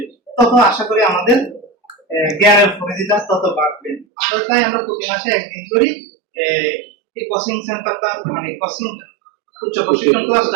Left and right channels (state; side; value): drops out; left; at 4.0 s